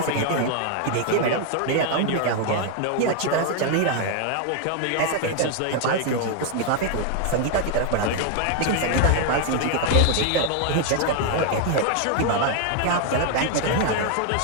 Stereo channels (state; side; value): different; both; correlation 0.00